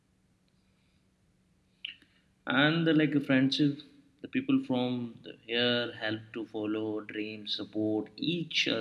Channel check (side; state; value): both; identical; correlation 1.00